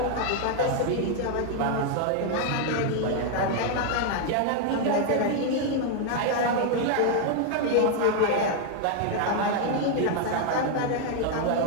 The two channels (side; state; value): both; different; correlation 0.00